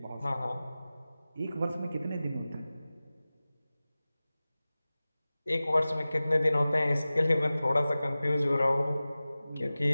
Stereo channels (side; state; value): both; inverted; correlation -0.97